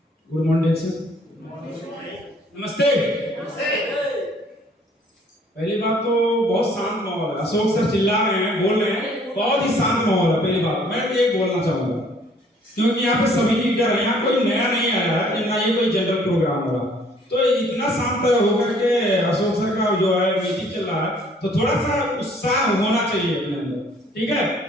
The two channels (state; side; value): normal; both; correlation 0.59